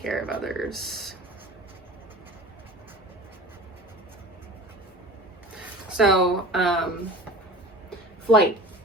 of others. So, flight,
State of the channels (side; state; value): both; normal; correlation 0.38